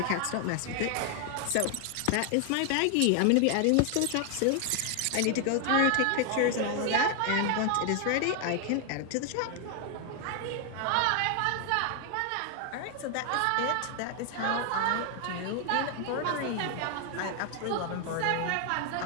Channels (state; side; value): different; both; correlation 0.00